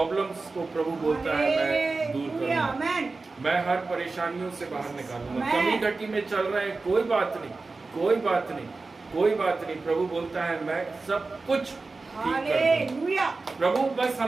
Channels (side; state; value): left; quieter; 3.8 dB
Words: को प्रभु बोलता है मैं दूर करूंगा, मैं हर परेशानियों से बाहर निकालूंगा। कमी घटी में चल रहे हैं, कोई बात नहीं, कोई बात नहीं, कोई बात नहीं। प्रभु बोलता है मैं सब कुछ ठीक कर दूंगा। प्रभु बस